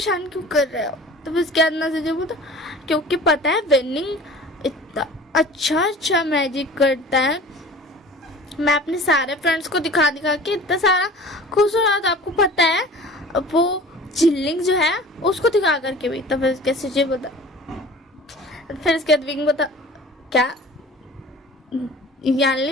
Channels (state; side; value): normal; both; correlation 0.43